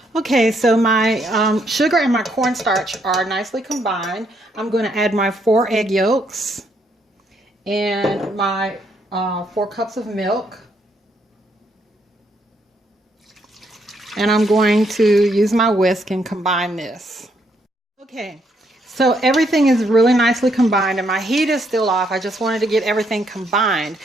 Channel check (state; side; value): normal; both; correlation 0.74